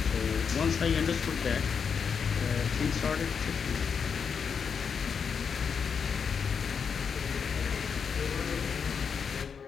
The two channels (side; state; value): right; quieter; 6.4 dB